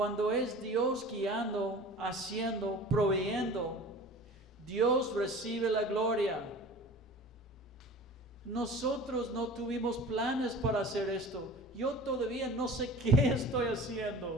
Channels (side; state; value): both; normal; correlation 0.40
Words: es Dios guiando, haciendo, proveyendo, Dios recibe la gloria. Nosotros no tuvimos planes para hacer esto. Yo todavía no sé qué estoy